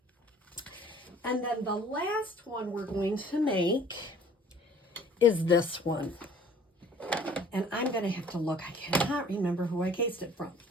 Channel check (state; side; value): normal; both; correlation 0.53